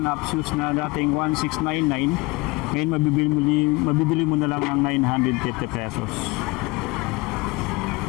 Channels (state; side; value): quieter; right; 24.9 dB